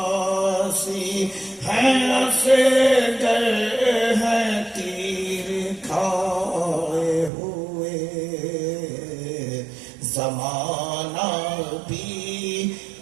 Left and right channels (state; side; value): drops out; left; at 7.3 s